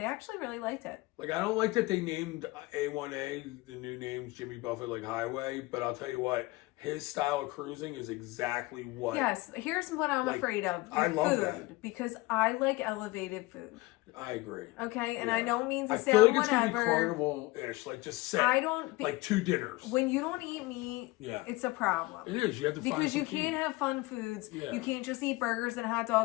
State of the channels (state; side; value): quieter; right; 21.6 dB